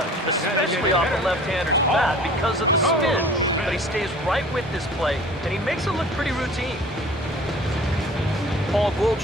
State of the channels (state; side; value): normal; both; correlation 0.46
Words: especially off the left-hander's bat because of the spin. But he stays right with this play, and he makes it look pretty routine. Paul